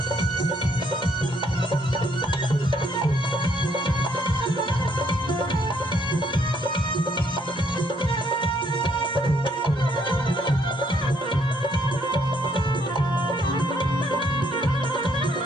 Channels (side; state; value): both; normal; correlation 0.69